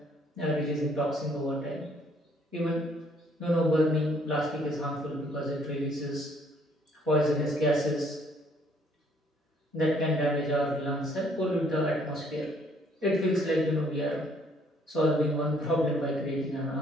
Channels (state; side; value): normal; both; correlation 0.64